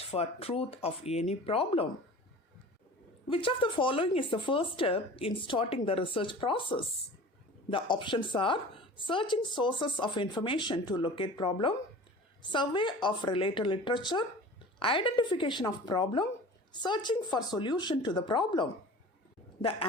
for truth of any problem. Which of the following is the first step in starting the research process? The options are searching sources of information to locate problem, survey of related literature, identification of problem, searching for solution to the problem. The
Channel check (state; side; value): normal; both; correlation 0.40